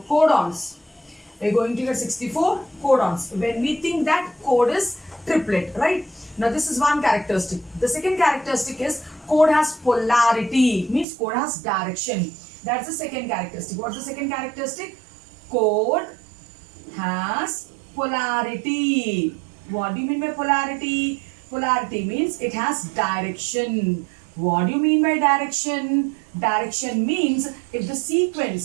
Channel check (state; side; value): drops out; left; at 11.1 s